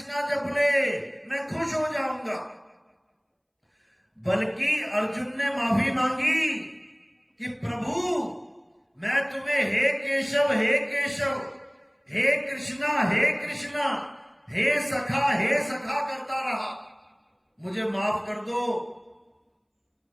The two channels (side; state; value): both; identical; correlation 1.00